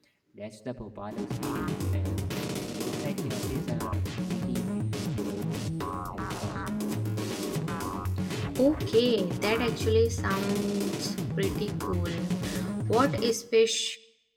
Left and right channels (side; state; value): both; identical; correlation 1.00